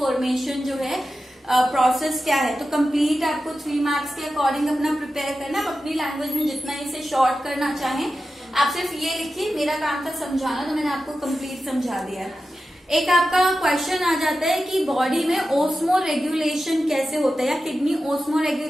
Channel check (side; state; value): both; normal; correlation 0.92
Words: जो है प्रोसेस क्या है। तो कंप्लीट आपको 3 मार्क्स के अकॉर्डिंग अपना प्रिपेयर करना। आप अपनी लैंग्वेज में जितना इसे शॉर्ट करना चाहें आप सिर्फ ये लिखिए, मेरा काम था समझाना, तो मैंने आपको कंप्लीट समझा दिया। एक आपका क्वेश्चन आ जाता है कि बॉडी में ओस्मो रेगुलेशन कैसे होता है, या किडनी ओस्मो